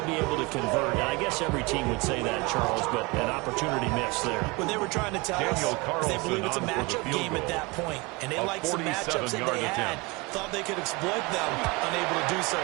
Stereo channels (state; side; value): quieter; left; 25.9 dB